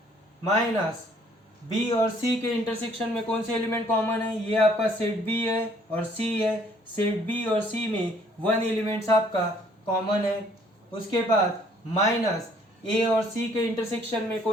माइनस बी और सी के इंटरसेक्शन में कौन से एलिमेंट कॉमन है, ये आपका सेट बी है और सी है, सेट बी और सी में 1 एलिमेंट्स आपका कॉमन है। उसके बाद माइनस ए और सी के इंटरसेक्शन में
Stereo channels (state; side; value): normal; both; correlation 0.62